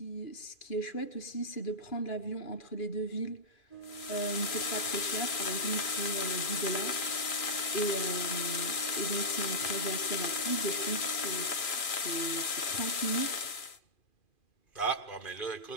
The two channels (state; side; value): late; right; 2.4 ms